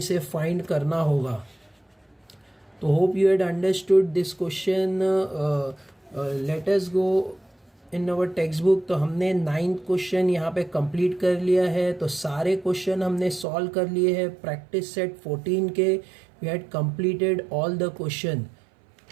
फाइंड करना होगा। तो hope you had understood this question. Late us go in our text book. तो हमने 9th क्वेश्चन यहाँ पे कंप्लीट कर लिया है। तो सारे क्वेश्चन हमने सॉल्व कर लिए हैं प्रैक्टिस सेट 14 के। We had completed all the question.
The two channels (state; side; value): drops out; left; at 13.5 s